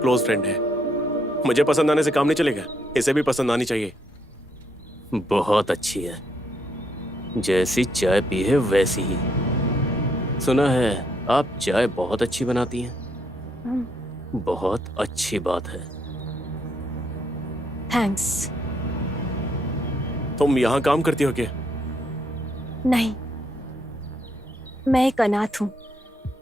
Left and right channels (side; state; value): both; normal; correlation 0.74